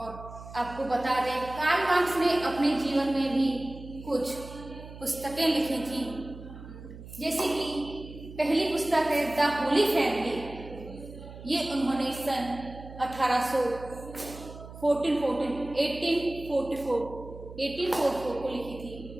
आपको बता दें, कार्ल मार्क्स ने अपने जीवन में भी कुछ पुस्तकें लिखी थी, जैसे कि पहली पुस्तक है द होली फैमिली। ये उन्होंने सन 1844 को लिखी थी।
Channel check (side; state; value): right; noise; hum, 15 dB below the sound